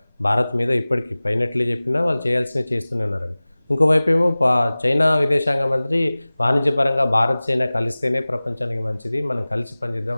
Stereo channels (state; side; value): inverted; both; correlation -0.99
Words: భారత్ మీద ఇప్పటికీ పైనట్లే చెప్పినా వాళ్ళు చేయాల్సినవి చేస్తూనే ఉన్నారని. ఇంకోవైపు ఏమో చైనా విదేశాంగ మంత్రి వాణిజ్యపరంగా భారత్, చైనా కలిస్తేనే ప్రపంచానికి మంచిది, మనం కలిసి